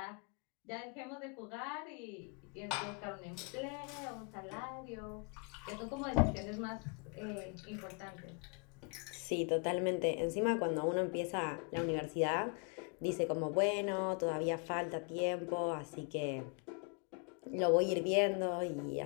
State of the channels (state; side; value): quieter; right; 36.1 dB